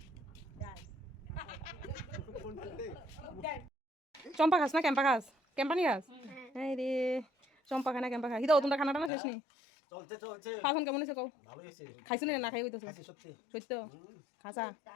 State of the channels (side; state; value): right; drops out; at 9.1 s